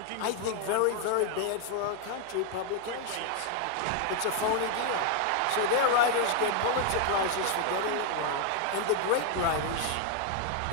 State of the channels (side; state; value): both; different; correlation 0.00